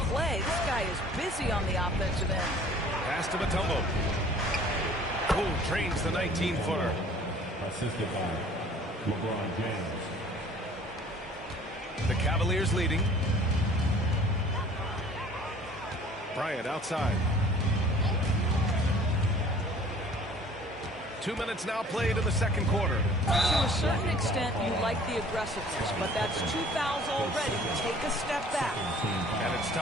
play. This guy is busy on the offensive end. Pass to Mutombo. Who drains the 19-footer. Assisted by LeBron James. The Cavaliers leading. Bryant outside. 2 minutes now played in the second quarter. To a certain extent, you like the aggressiveness, but that's 2 fouls already. Take a step back. And it's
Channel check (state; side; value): normal; both; correlation 0.51